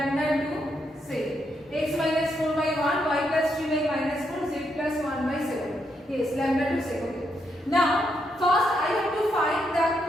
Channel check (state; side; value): normal; both; correlation 0.79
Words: 2. Say x minus 4 by 1, y plus 3 by minus 4, z plus 1 by 7. Yes, lambda 2 say. Okay. Now, first I have to find the